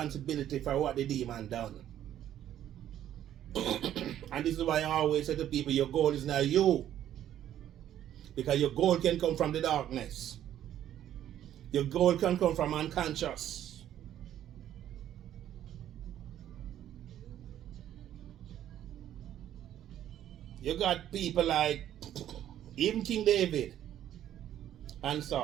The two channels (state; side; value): quieter; left; 11.4 dB